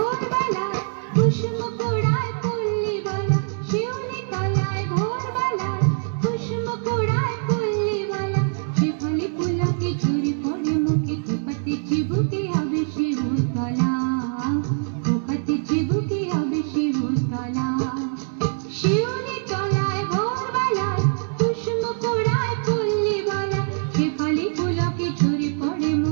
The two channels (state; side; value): silent; left; 63 dB below the other